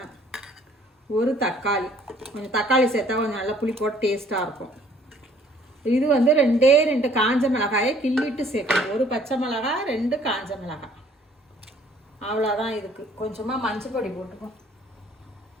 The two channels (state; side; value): normal; both; correlation 0.58